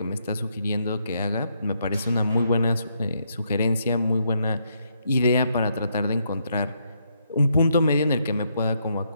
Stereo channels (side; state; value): both; inverted; correlation -0.76